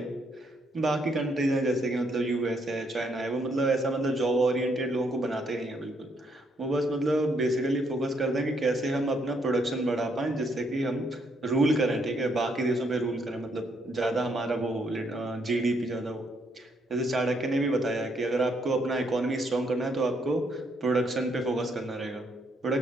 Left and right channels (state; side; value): normal; both; correlation 0.73